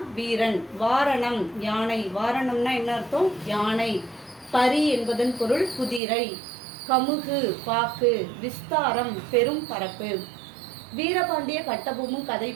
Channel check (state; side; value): drops out; left; at 6.0 s